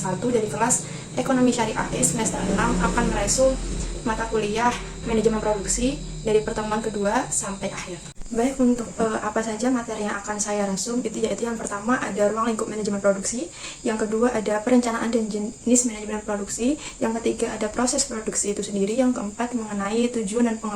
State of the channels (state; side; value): identical; both; correlation 1.00